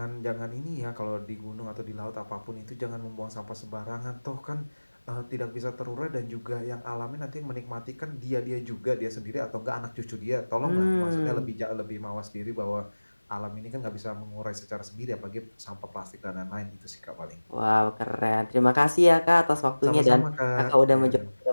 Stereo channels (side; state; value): both; inverted; correlation -1.00